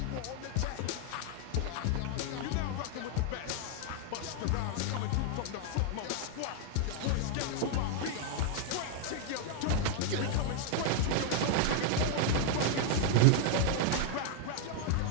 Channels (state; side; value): different; both; correlation 0.00